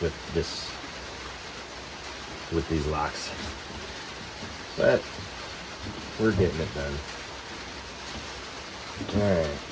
with these locks, but we're getting it done. All right,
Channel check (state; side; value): identical; both; correlation 1.00